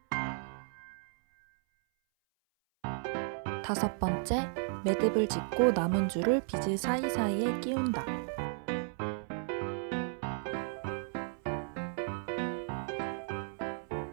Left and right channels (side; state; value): left; silent; 55 dB below the other